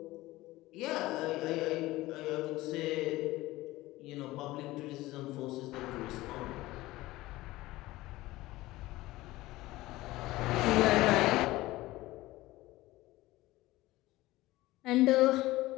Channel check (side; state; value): right; quieter; 18.2 dB